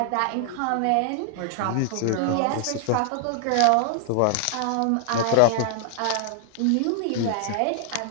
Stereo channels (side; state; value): both; different; correlation 0.00